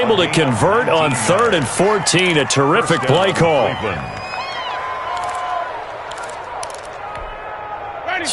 to convert on 3rd and 14. A terrific play call.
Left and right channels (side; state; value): both; identical; correlation 1.00